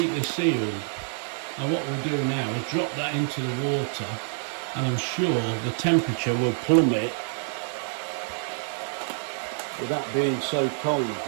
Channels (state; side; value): silent; left; 60 dB below the other